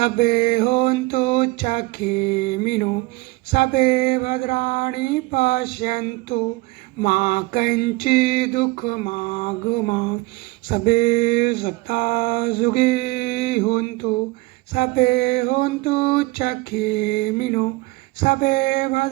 होन्तु चखेमिनो सबे भद्राणि पश्यन्तु मा कञ्चित् दुःखमागमा सबे सत्ता सुखी होन्तु सबे होन्तु चखेमिनो सबे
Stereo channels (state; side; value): quieter; left; 22.4 dB